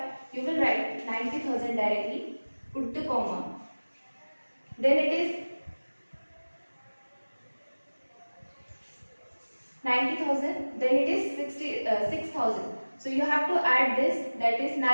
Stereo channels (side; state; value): both; inverted; correlation -1.00